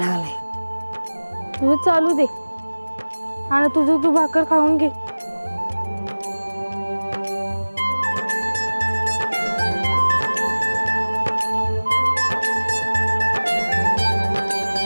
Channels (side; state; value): both; inverted; correlation -1.00